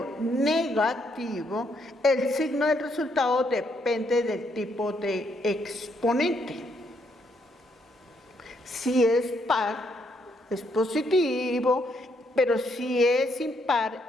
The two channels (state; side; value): normal; both; correlation 0.74